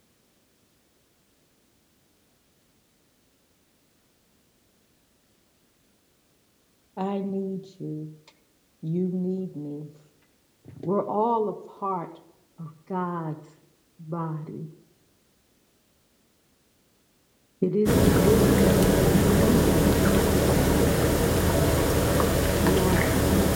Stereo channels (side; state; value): both; identical; correlation 1.00